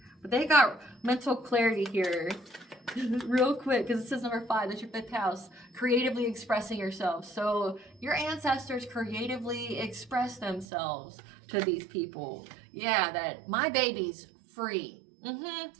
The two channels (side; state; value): left; drops out; at 10.7 s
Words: But they got mental clarity here. Real quick, because it says number 5, that's your 5th house, creatively expressing yourself. So your ancestors creatively express themselves to these people. Yeah, that my baby's free.